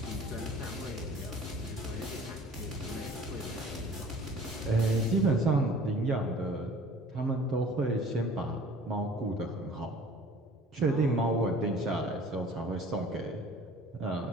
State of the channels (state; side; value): normal; both; correlation 0.48